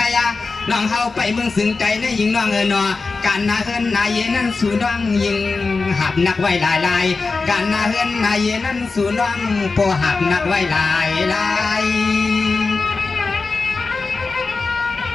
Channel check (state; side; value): quieter; right; 4.1 dB